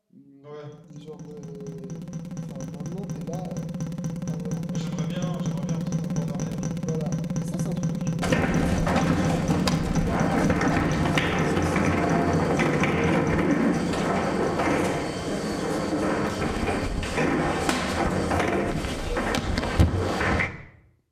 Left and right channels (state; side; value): identical; both; correlation 1.00